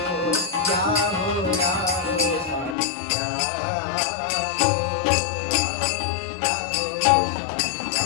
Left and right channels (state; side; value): drops out; right; at 2.8 s